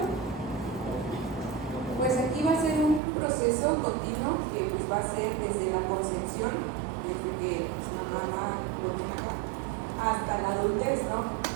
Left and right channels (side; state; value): left; drops out; at 3.0 s